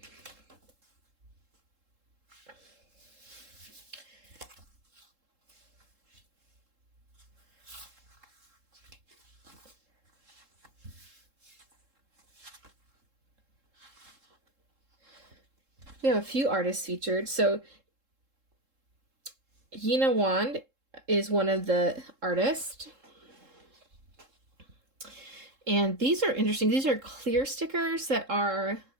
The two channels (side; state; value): left; late; 3.7 ms